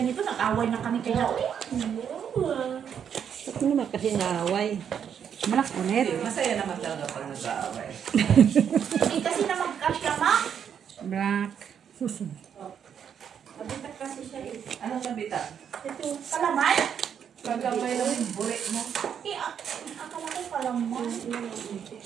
nag-away na kami kaya, uy. Ano naman kasi naaway? Malak ulit. Masaya naman talaga pag nag-aaway. Hindi kasi na magkasya, ma'am. Black. Mabitak kasi siya eh. Anong nabita? Ito, palaman? Pagkabay lang yung burik mo. Eh, akala ko palaman.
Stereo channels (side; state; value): left; quieter; 8.1 dB